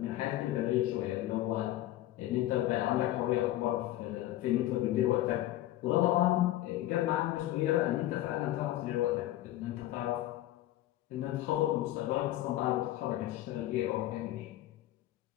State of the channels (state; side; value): quieter; right; 14.9 dB